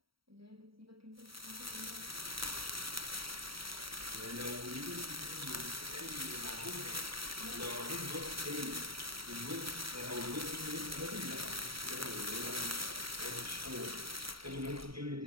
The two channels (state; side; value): late; left; 0.75 ms